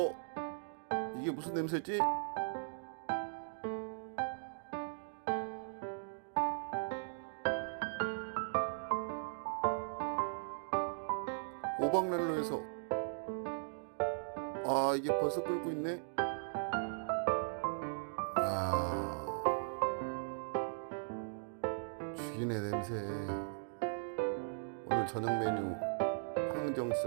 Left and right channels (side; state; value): left; silent; digital silence